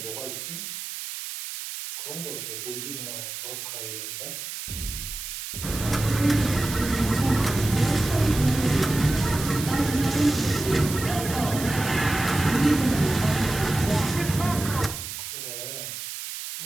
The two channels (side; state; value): right; noise; hiss, 8 dB below the sound